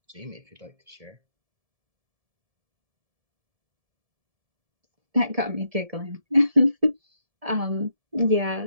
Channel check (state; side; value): late; left; 1.7 ms